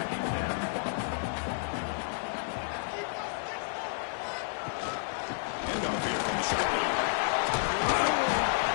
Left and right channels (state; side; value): silent; right; 57 dB below the other